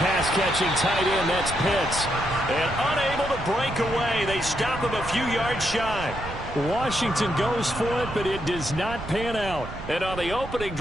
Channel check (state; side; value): noise; right; rumble, 11 dB below the sound